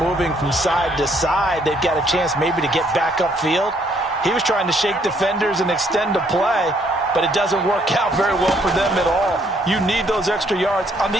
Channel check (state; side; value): normal; both; correlation 0.67